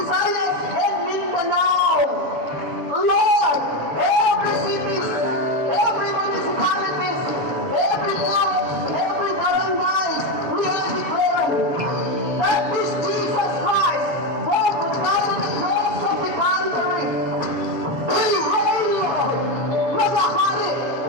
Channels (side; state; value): left; late; 7.2 ms